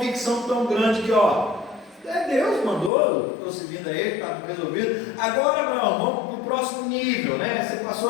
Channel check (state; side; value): drops out; right; at 2.9 s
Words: tão grande que, Deus mandou, estou seguindo a ele, está resolvido. Agora, Abraão, vamos para o próximo nível, né? Você